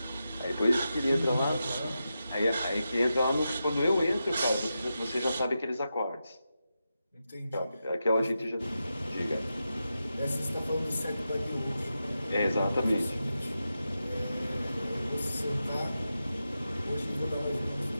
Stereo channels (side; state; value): both; inverted; correlation -0.89